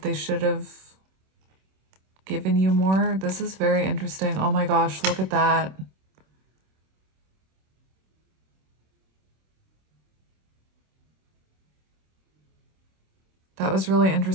they should have given you more. This is very interesting. Oh my gosh, look at that. That was really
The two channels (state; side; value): late; left; 26 ms